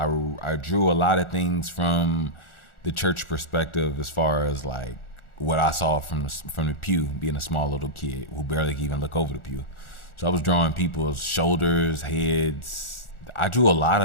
I drew a lot of things from the church perspective as far as like what I saw from the pew, being a small little kid who barely could even look over the pew. So I was drawing people's shoulders, heads, I drew a lot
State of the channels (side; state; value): right; late; 1.4 ms